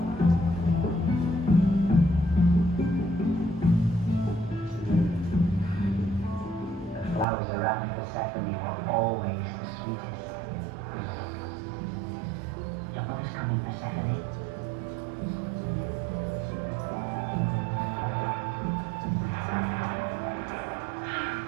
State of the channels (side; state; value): left; drops out; at 7.2 s